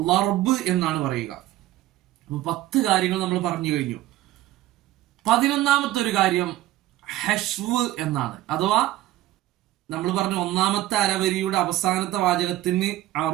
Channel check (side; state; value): left; quieter; 15.3 dB